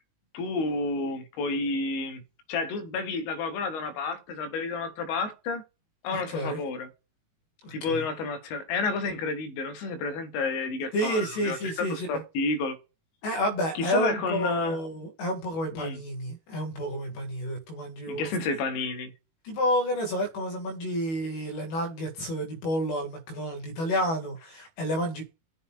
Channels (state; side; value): late; right; 19 ms